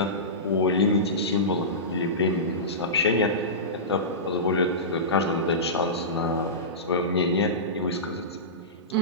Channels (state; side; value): normal; both; correlation -0.19